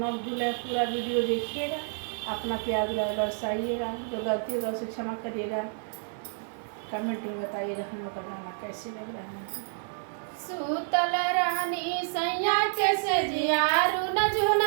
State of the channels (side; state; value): left; silent; digital silence